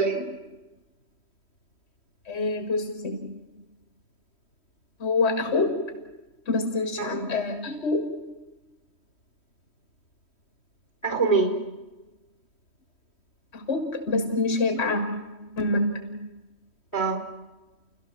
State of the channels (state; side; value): late; right; 3.1 ms